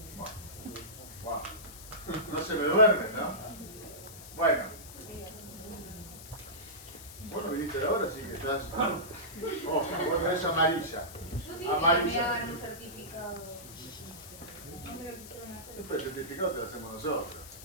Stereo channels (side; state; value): left; noise; hiss, 15 dB below the sound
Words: Bueno. No se me duermen, ¿no? Bueno. Bueno, viniste ahora, así que estás... Oh, vos tenés amarilla. Yo dije que me Amarilla. hagan un certificado. No me lo quisieron hacer. Después el certificado te lo hacemos nosotros.